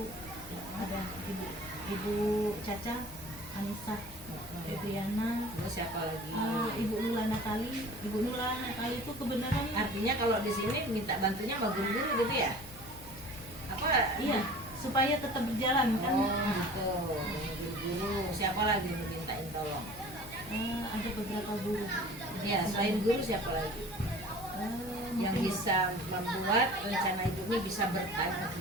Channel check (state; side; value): noise; left; hum, 19 dB below the sound